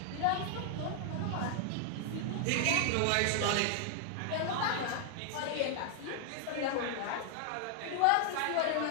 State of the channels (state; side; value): different; both; correlation 0.00